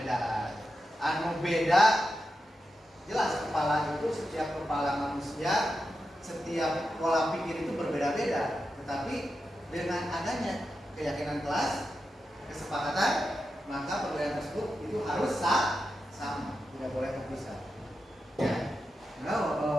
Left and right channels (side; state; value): both; normal; correlation 0.89